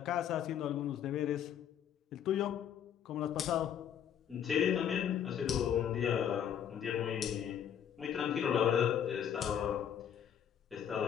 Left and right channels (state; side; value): quieter; right; 9.2 dB